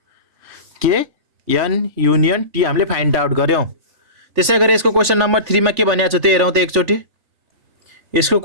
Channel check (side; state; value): left; late; 3.4 ms